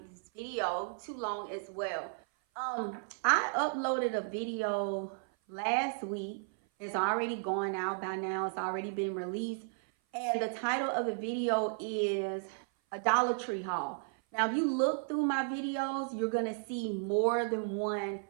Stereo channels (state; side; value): silent; left; 55 dB below the other